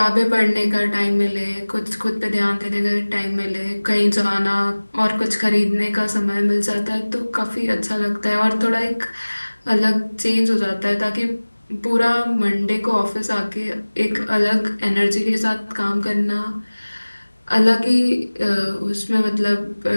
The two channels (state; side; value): inverted; both; correlation -1.00